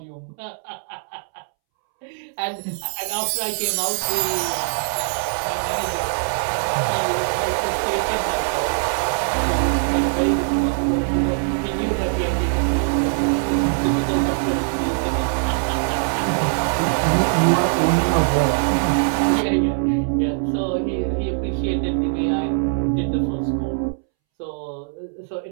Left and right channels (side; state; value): left; silent; 64 dB below the other